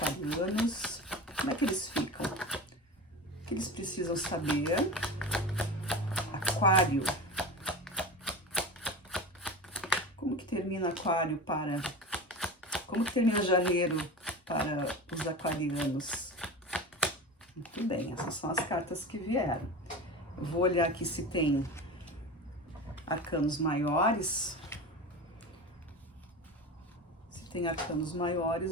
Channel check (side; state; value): both; normal; correlation 0.29